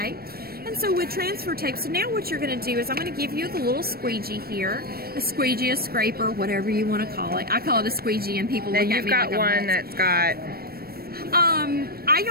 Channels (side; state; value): left; late; 0.44 ms